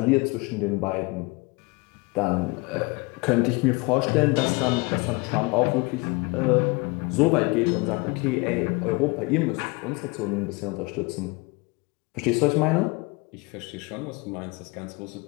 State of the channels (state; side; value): quieter; right; 26.8 dB